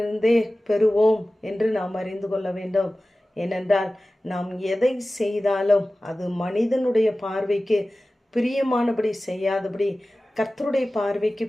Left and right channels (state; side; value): normal; both; correlation 0.96